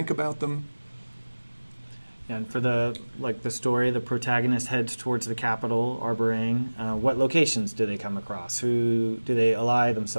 about them. And for the story, the protagonist heads towards the capital, Arborang. What locations do they come across? Who do they ally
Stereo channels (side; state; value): both; inverted; correlation -1.00